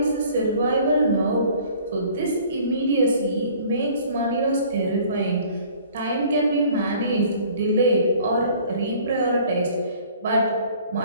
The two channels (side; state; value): both; inverted; correlation -0.52